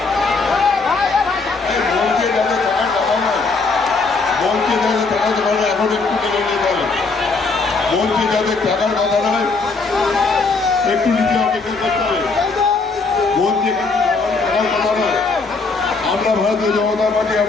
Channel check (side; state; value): right; quieter; 4.1 dB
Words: এখন একটু মেনে নিয়ে পারেন, বলছি যাদের টাকার কথা নয়, একটু নিজে অপেক্ষা করতে হবে। বলছি টাকার কথা নয়। আমরা ভারতীয় জনতা পার্টি,